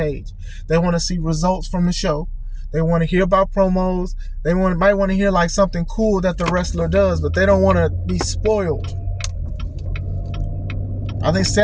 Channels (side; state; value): both; identical; correlation 1.00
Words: They want to see results from the show. They want to hear about promos. They might want to hear like something cool that the wrestler does, but they don't want to be spoiled. I think